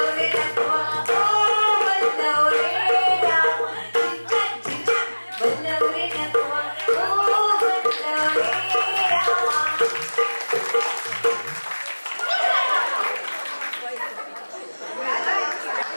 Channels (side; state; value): both; inverted; correlation -1.00